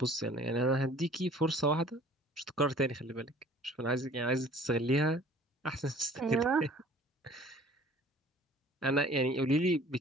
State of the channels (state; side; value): normal; both; correlation 0.51